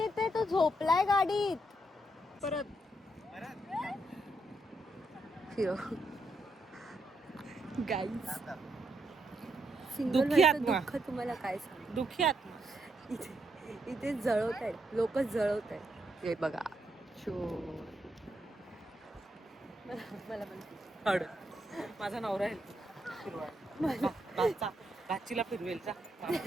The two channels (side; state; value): both; normal; correlation 0.79